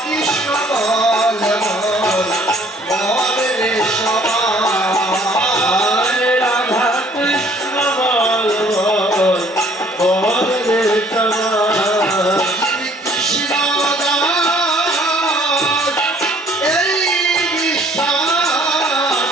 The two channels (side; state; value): both; normal; correlation 0.58